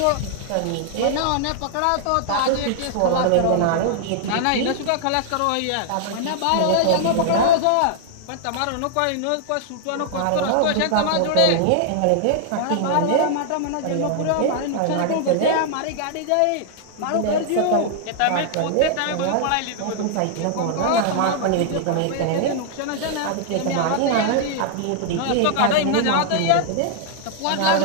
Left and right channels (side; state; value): both; different; correlation 0.00